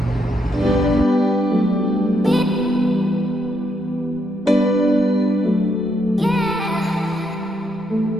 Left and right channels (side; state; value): both; normal; correlation 0.77